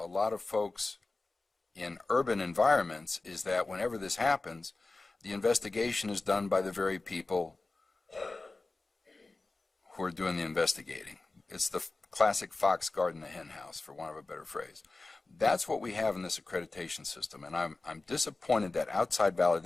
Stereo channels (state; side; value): quieter; right; 3.4 dB